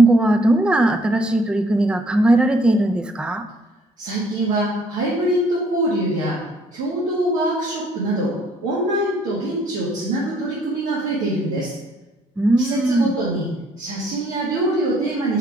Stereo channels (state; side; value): normal; both; correlation 0.63